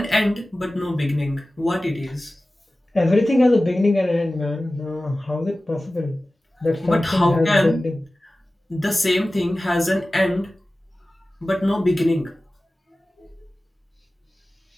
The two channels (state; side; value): normal; both; correlation 0.96